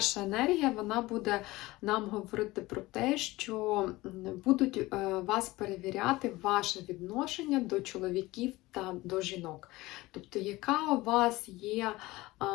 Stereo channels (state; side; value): quieter; right; 19.6 dB